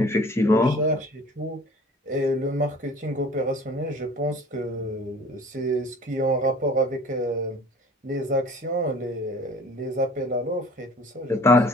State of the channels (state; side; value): normal; both; correlation 0.47